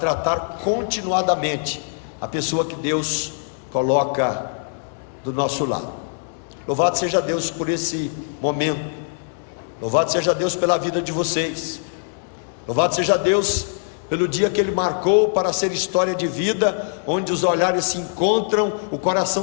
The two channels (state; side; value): silent; right; digital silence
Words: continuadamente a pessoa que Deus coloca do nosso lado. Louvado seja Deus por esse momento, louvado seja Deus pela vida de vocês, louvado seja Deus pelo dia que Ele marcou para ser história de vida, onde os olhares se encontram, o